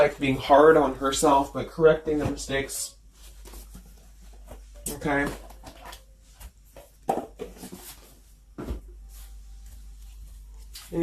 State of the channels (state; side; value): identical; both; correlation 1.00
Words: being hard on herself, but correcting the mistakes. Okay?